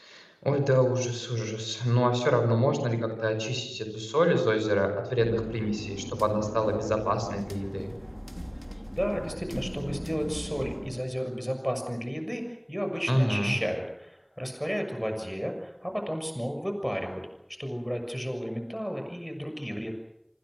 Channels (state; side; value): identical; both; correlation 1.00